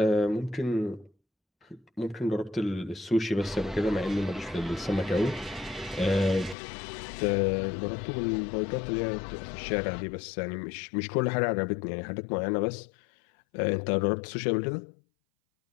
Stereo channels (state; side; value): drops out; right; at 6.6 s